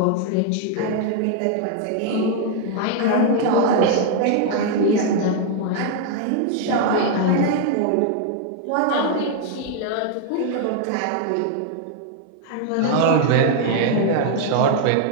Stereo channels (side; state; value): both; different; correlation 0.00